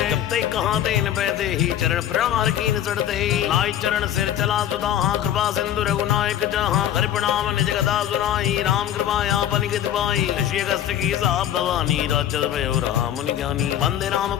जब तक कहा तेन पैदे ही चरण प्रहार कीन चढ़ते ही नाई चरण सिर चला सुधा कृपा सिंधु रघुनायक जहाँ हरि प्रणाम निज गदा सुनाई राम कृपा यापन गित पाई ऋषि अगस्त्य की साप भवानी राजद भयो राम मुनि ज्ञानी वंदे राम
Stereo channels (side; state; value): right; quieter; 10.9 dB